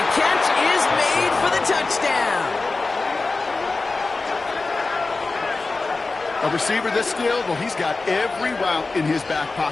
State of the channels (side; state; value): right; quieter; 3.7 dB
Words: catch is made for the touchdown. A receiver this skilled, well, he's got every route in his back